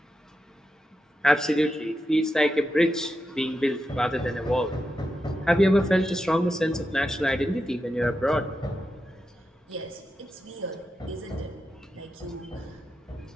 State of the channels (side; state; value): both; normal; correlation 0.88